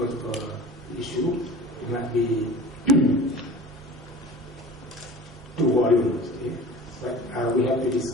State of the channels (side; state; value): both; normal; correlation 0.39